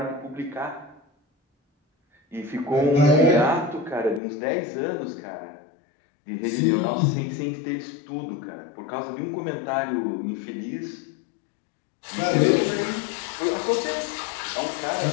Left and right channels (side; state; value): right; drops out; at 4.2 s